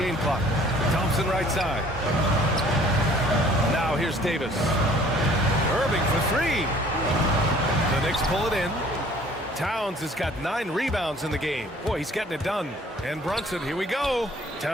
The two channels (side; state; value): both; normal; correlation 0.54